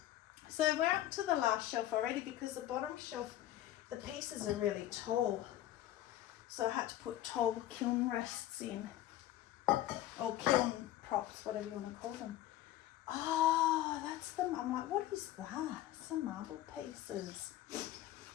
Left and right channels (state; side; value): quieter; right; 13.7 dB